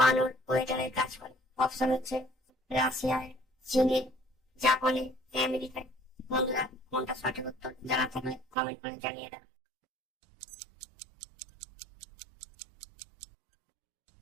ওয়েটারের কাজ করে? অপশন হচ্ছে রাশিয়ায়, চীনে, জাপানে, আমেরিকায়। বন্ধুরা, কোনটা সঠিক উত্তর জানা থাকলে কমেন্ট করে জানিয়ে দাও।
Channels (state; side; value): drops out; left; at 8.6 s